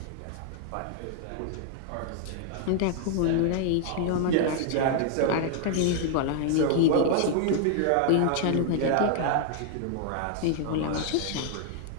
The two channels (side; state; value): both; different; correlation 0.00